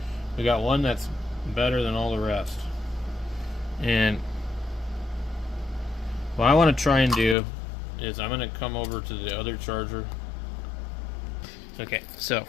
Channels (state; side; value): drops out; right; at 7.4 s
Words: We got one that's better than all the rest. And what I want to try and do is I'm going to come over to the other charger. Okay, so